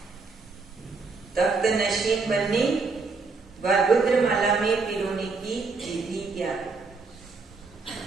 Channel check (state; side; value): quieter; left; 4.2 dB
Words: तप्त नशीन बनने व रुद्रमाला में पिरोने की विधि क्या है?